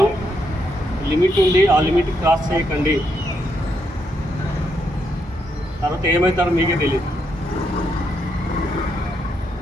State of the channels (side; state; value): both; normal; correlation 0.78